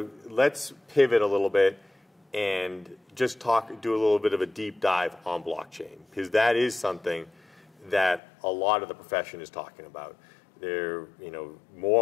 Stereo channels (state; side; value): drops out; right; at 8.2 s